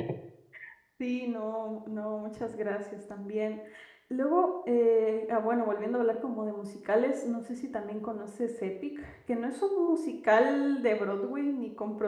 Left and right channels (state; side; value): identical; both; correlation 1.00